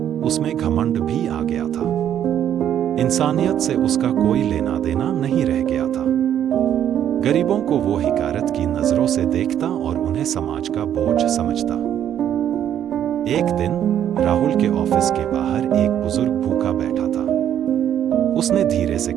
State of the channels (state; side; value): quieter; left; 10.2 dB